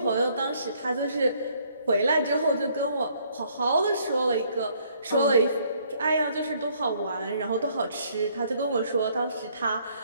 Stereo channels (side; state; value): both; inverted; correlation -0.65